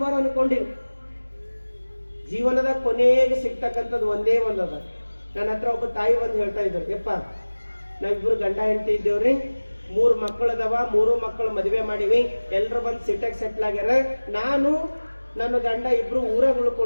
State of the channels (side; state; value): both; inverted; correlation -1.00